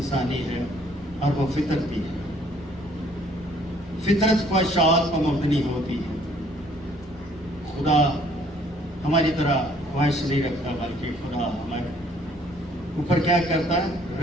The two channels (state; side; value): normal; both; correlation 0.61